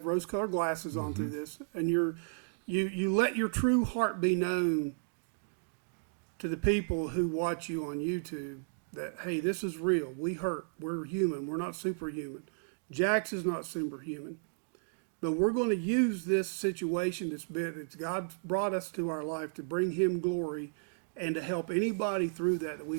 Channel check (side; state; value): left; silent; digital silence